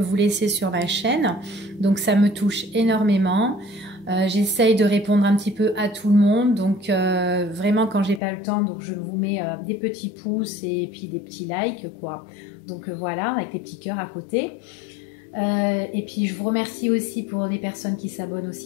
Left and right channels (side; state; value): right; drops out; at 8.2 s